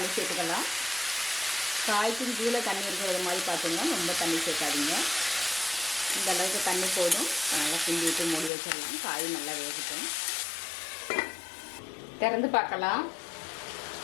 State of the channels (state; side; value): drops out; right; at 8.5 s